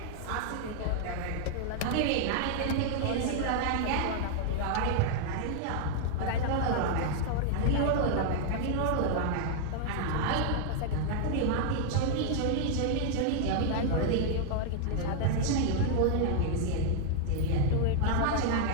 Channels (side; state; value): both; different; correlation 0.00